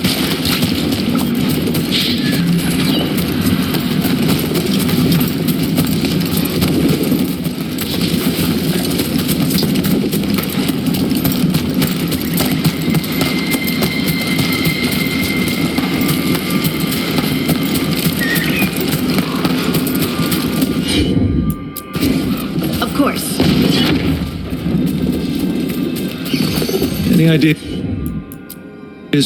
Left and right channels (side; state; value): both; identical; correlation 1.00